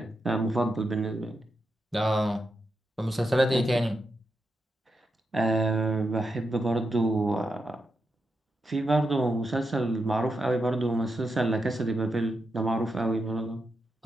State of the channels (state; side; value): normal; both; correlation 0.86